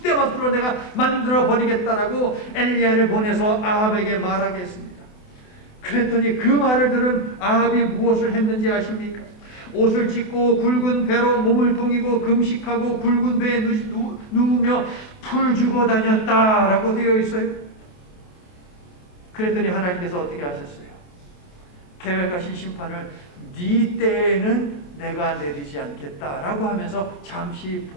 내가 만들어 버리겠다라고 엘리야를 보내서 아합에게 말하게 했습니다. 그랬더니 그 말을 들은 아합이 무엇을 했는지 아십니까? 옷을 찢고 굵은 배로 몸을 동이고 금식하고 굵은 배에 누우며 풀 주고 다녔다라고 되어 있어요. 그랬더니 하나님께서 어떻게 하셨어요? 계획하신 심판을 네 때에는 내가 내리지 않겠다라고 하면서 잠시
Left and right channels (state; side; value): late; right; 28 ms